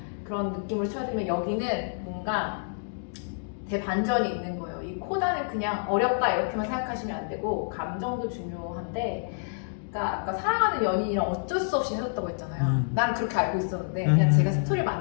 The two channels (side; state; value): right; silent; digital silence